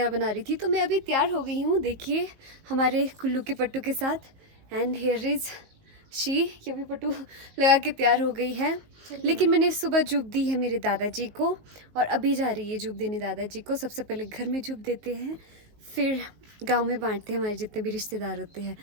बना रही थी। तो मैं अभी तैयार हो गई हूँ, देखिए हमारे कुल्लू के पट्टू के साथ। एंड हेयर इज़ शी, ये भी पट्टू लगा के तैयार हो गई है। लेकिन मैंने सुबह जूप दी है मेरे दादाजी को और अभी जा रही है जूप देने दादाजी को। सबसे पहले घर में जूप देते हैं, फिर गांव में बांटते हैं हमारे जितने भी रिश्तेदार होते हैं।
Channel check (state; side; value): late; left; 19 ms